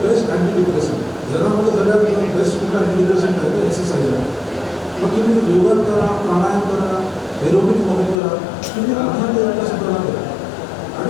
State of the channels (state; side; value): drops out; right; at 8.2 s